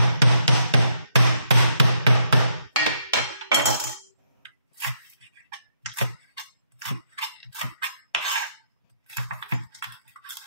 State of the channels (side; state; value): both; inverted; correlation -0.75